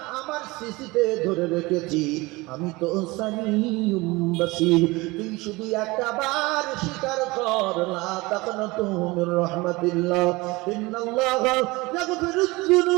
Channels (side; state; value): left; quieter; 22.5 dB